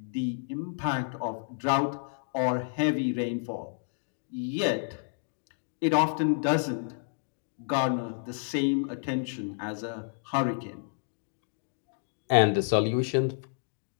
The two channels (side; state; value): right; silent; digital silence